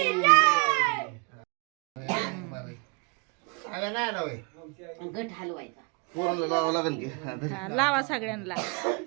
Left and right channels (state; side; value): quieter; left; 31.9 dB